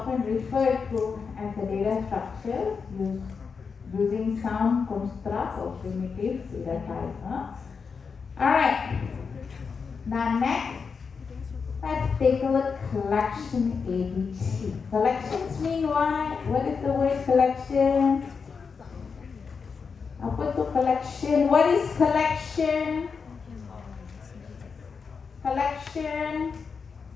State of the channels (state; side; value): quieter; right; 5.5 dB